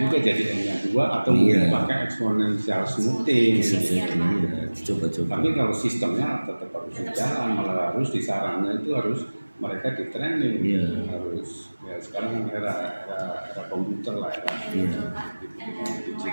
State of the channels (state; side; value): inverted; both; correlation -1.00